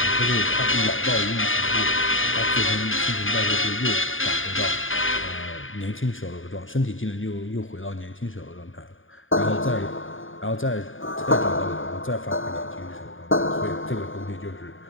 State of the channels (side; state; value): right; late; 0.58 ms